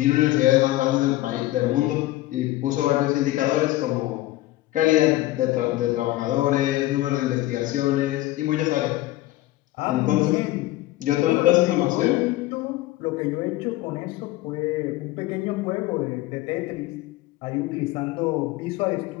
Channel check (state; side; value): quieter; right; 16.9 dB